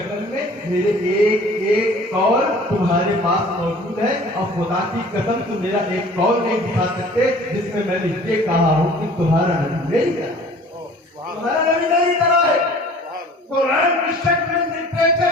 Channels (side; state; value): both; normal; correlation 0.48